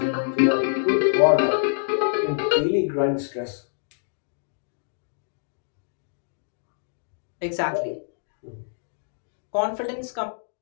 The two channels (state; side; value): silent; right; digital silence